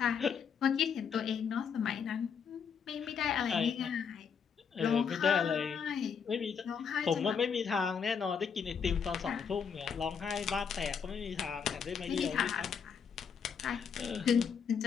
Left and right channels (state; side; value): quieter; right; 6.7 dB